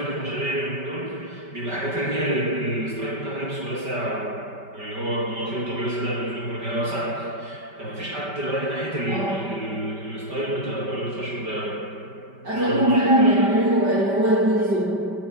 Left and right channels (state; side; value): late; left; 5.1 ms